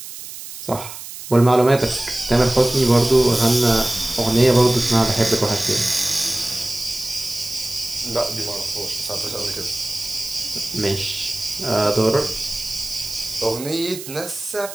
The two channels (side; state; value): right; noise; hiss, 12 dB below the sound